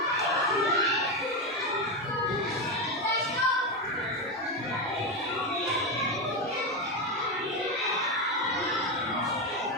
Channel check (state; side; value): normal; both; correlation 0.12